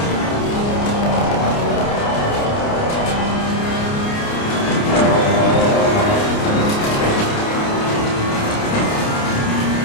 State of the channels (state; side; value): late; right; 29 ms